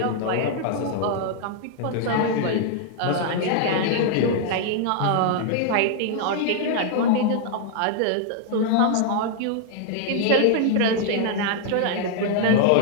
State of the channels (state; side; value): different; both; correlation 0.00